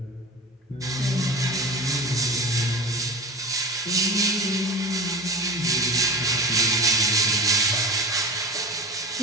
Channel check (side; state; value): both; normal; correlation 0.33